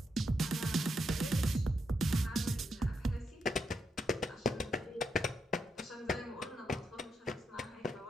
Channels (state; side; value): normal; both; correlation 0.82